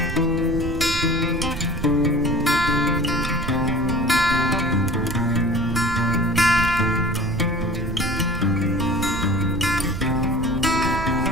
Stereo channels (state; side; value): noise; right; rumble, 7 dB below the sound